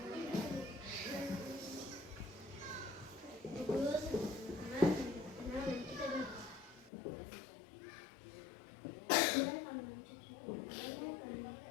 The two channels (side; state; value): right; drops out; at 6.9 s